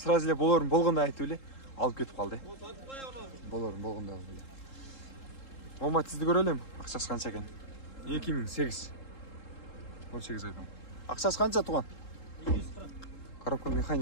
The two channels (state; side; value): late; right; 3.7 ms